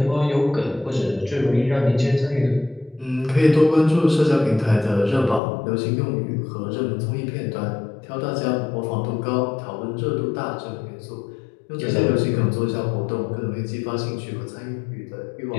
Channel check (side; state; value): right; drops out; at 5.4 s